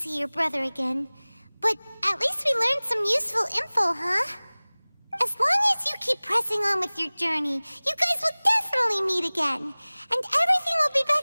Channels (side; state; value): both; inverted; correlation -1.00